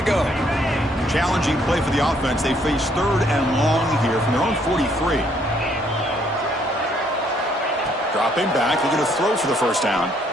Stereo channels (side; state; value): both; normal; correlation 0.67